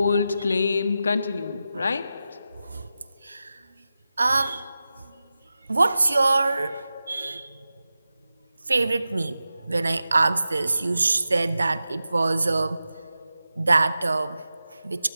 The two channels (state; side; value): inverted; both; correlation -0.92